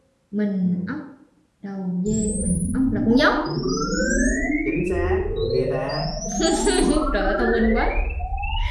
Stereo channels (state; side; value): identical; both; correlation 1.00